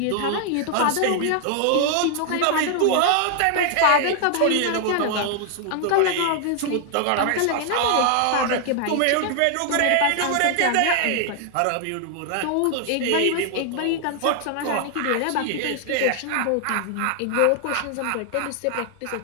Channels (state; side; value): different; both; correlation 0.00